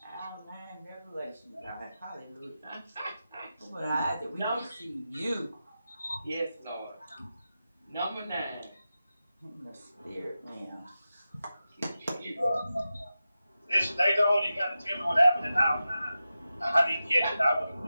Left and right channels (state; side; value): inverted; both; correlation -0.92